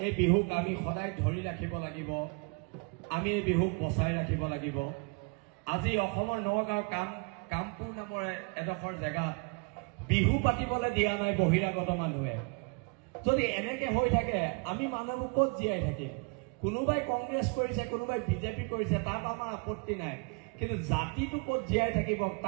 এই বিহুক আমি সদায় ধৰি ৰাখিব লাগিব, আমি এই বিহুক বচাই ৰাখিব লাগিব। আজি অসমৰ নগাঁও কামপুৰ নামৰ এডোখৰ জেগাত বিহু পাতিবলৈ দিয়া নাই বহিৰাগত মানুহে। যদি এনেকে হৈ থাকে আমি মানুহবোৰ ক'ত জীয়াই থাকিম? কোনোবাই কংগ্ৰেছ কৰিছে, কোনোবাই বিজেপি কৰিছে, তাত আমাৰ আপত্তি নাই, কিন্তু জাতিটো ক'ত জীয়াই থাকিব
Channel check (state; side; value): quieter; left; 33.6 dB